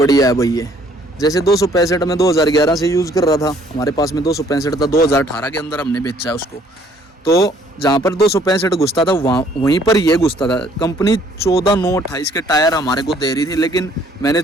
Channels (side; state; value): both; normal; correlation 0.61